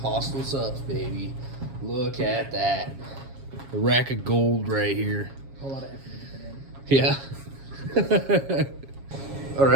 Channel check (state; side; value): late; left; 7.3 ms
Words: Hostile Subs, baby. Look at that. A rack of gold right here. A lot of effort to get that in. Yeah. All